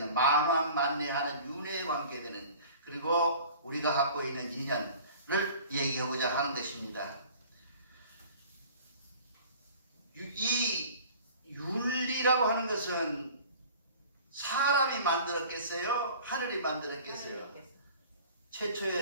만왕만내하는 윤회에 관계되는, 그리고 우리가 갖고 있는 인연을 얘기하고자 하는 것입니다. 이 윤리라고 하는 것은 사람이 만들었겠어요? 하늘이 만들었겠어요?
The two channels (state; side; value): inverted; both; correlation -0.45